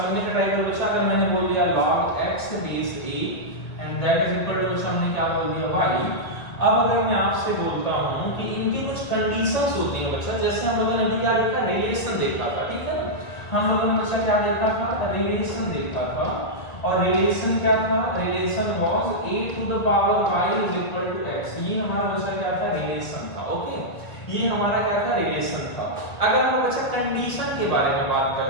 का ट्राई करो बच्चा। अगर मैंने बोल दिया log x base a and that is equal to, बच्चा हमने क्या बोल दिया, y। अब अगर मैं आपसे बोलता हूं कि इनकी कुछ कंडीशंस होती हैं बच्चा, जैसे हम लोगों ने अभी क्या देखा, रिलेशन देखा था। ठीक है, हम लोगों ने बच्चा क्या देखा था, रिलेशन देखा था। और रिलेशन क्या था, relation was a to the power y is equal to x। ये हमारा बच्चा क्या था, रिलेशन था। ओके, ये हमारा क्या था, रिलेशन था। अगर हम बच्चा कंडीशन के बारे में बात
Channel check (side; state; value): right; late; 2.1 ms